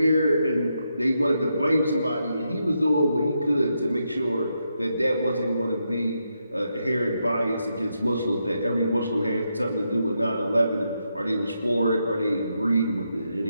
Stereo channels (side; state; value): both; inverted; correlation -0.82